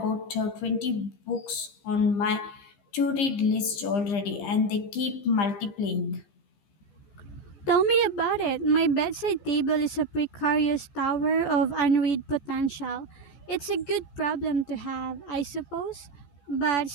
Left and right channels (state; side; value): late; right; 15 ms